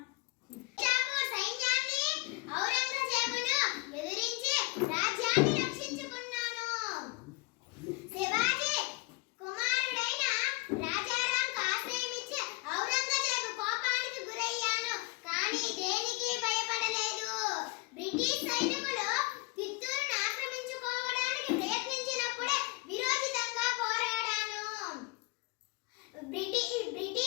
నిజాపూర్ సైన్యాన్ని ఔరంగజేబును ఎదిరించి రాజ్యాన్ని రక్షించుకున్నాను. శివాజీ కుమారుడైన రాజారాంకు ఆశ్రయమిచ్చి ఔరంగజేబు కోపానికి గురయ్యాను. కానీ దేనికి భయపడలేదు. బ్రిటిష్ సైన్యం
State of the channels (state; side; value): quieter; right; 25.3 dB